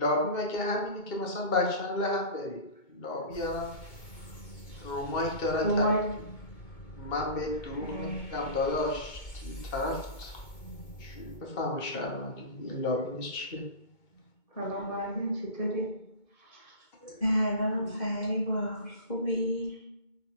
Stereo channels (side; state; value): right; late; 2.2 ms